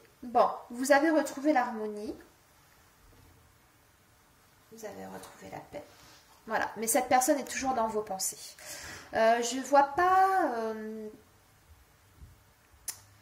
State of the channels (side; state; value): both; identical; correlation 1.00